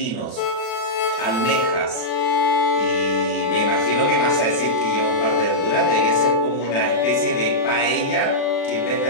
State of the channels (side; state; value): right; late; 36 ms